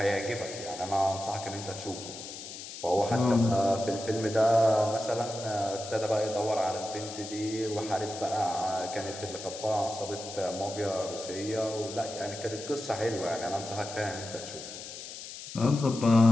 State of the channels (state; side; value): noise; left; hiss, 11 dB below the sound